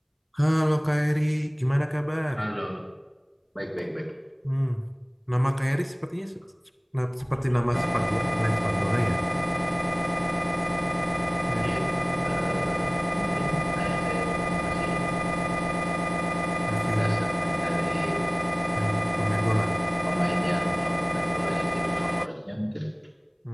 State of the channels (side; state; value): both; identical; correlation 1.00